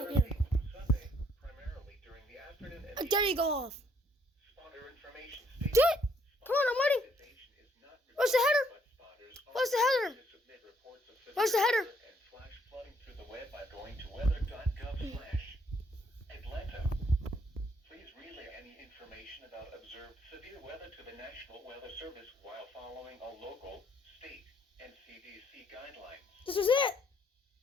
Thursday through Sunday, primarily during the afternoon and There you go off. spotter information states. Do it. Come on, I'm waiting. Where's the header? Where's the header? Where's the header? And flash flooding through the web by going to weather.gov/Atlanta. Please relay any information about observed severe weather to the National Weather Service while following all local, state, and CDC guidelines. This is it.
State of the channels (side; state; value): both; normal; correlation 0.68